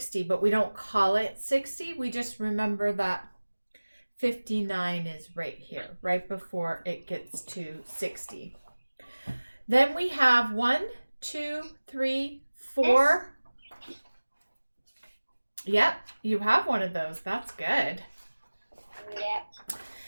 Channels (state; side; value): inverted; both; correlation -1.00